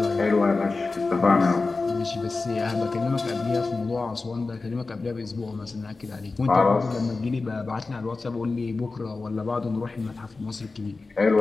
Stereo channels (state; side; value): quieter; right; 3.8 dB